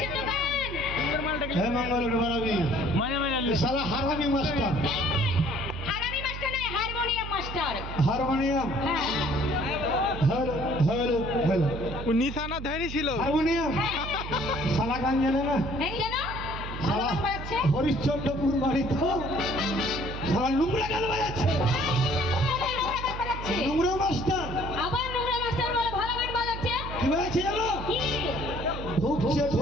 হ্যাঁ মঙ্গল বাড়াবি সারা হারামি মাস্টার। হারামি মাস্টার নয়, হারমোনিয়াম মাস্টার। হারমোনিয়াম ও নিশানা ধরে ছিল হারমোনিয়াম সালা গান জানে না। সালা হরিশ্চন্দ্রপুর বাড়ি তো সালা নোংরা গান বাজাচ্ছে। নোংরা মাস্টার আবার নোংরা মাস্টার বলে ভালো গান বাজাচ্ছে। কি বাজাচ্ছে জানো? ঢুকছে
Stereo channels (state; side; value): noise; right; hum, 8 dB below the sound